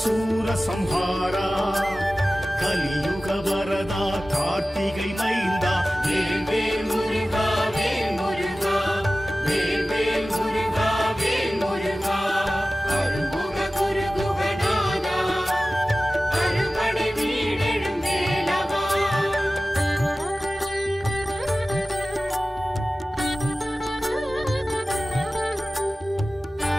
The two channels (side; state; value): both; normal; correlation 0.96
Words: சூர சம்ஹாரா கலியுக வரதா கார்த்திகை மைந்தா வேல் முருகா வேல் முருகா வேல் முருகா வேல் முருகா அருள்முக குருகுகநாதா அறுபடை வீடெழும் வேலவா